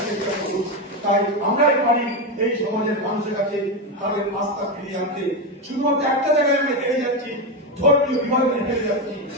চেষ্টা করুন। তাই আমরাই পারি এই সমাজের মানুষের কাছে তাদের আস্থা ফিরিয়ে আনতে। শুধুমাত্র একটা জায়গায় আমরা হেরে যাচ্ছি, ধর্মীয় বিভাজনে হেরে যাচ্ছি,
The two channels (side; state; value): both; normal; correlation 0.12